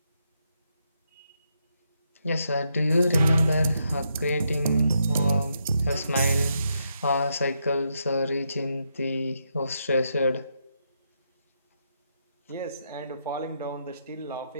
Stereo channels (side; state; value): both; inverted; correlation -0.80